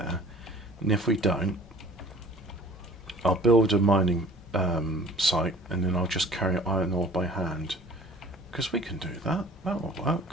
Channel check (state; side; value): normal; both; correlation 0.50